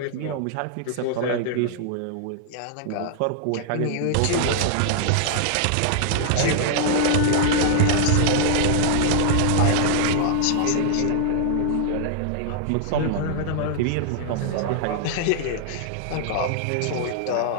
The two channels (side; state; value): both; different; correlation 0.00